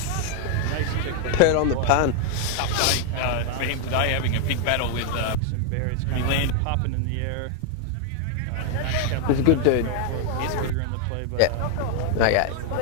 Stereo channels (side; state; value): both; different; correlation 0.00